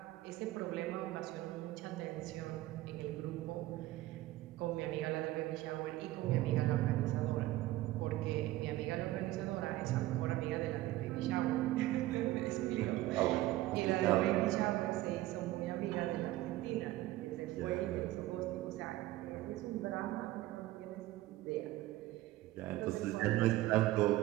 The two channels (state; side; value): quieter; left; 16.6 dB